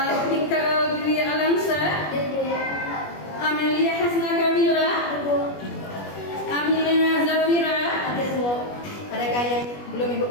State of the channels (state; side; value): late; right; 21 ms